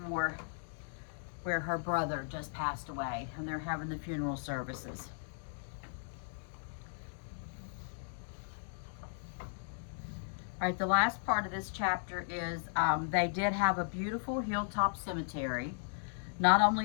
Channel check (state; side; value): silent; right; digital silence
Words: War, where her brother just passed away, and they're having the funeral services. All right, the last part of this chapter is they did have a beautiful hilltop cemetery, not